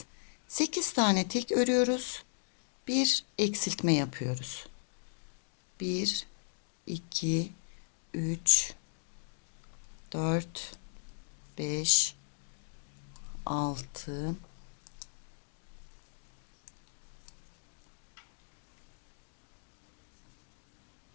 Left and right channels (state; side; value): silent; right; digital silence